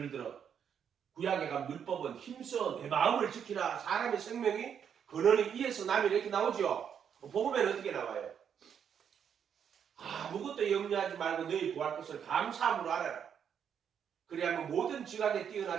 들어 구약에 가면 율법은 힘써 내 마음을 지키라. 사람의 생명이 근원이 이에서 남이 이렇게 나오죠. 복음에는 어떻게 나와요? 아무것도 염려하지 말고 너희 구할 것을 감사함으로 알아라. 그래야만 모든 지각에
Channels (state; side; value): quieter; left; 8.0 dB